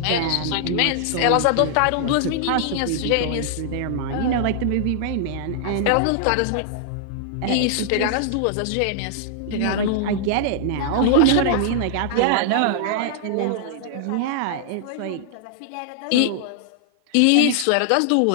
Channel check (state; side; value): different; both; correlation -0.01